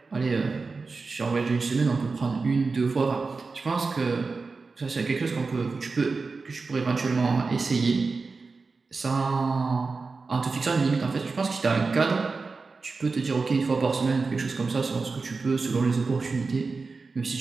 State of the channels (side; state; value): left; quieter; 4.2 dB